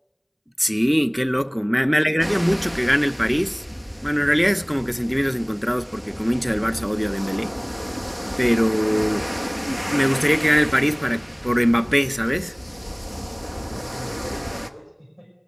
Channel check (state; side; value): identical; both; correlation 1.00